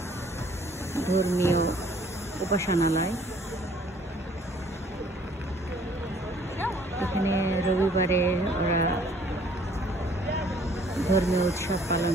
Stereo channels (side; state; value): both; normal; correlation 0.58